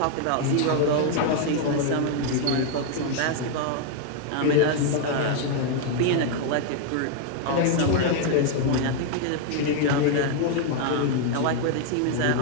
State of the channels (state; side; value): different; both; correlation 0.00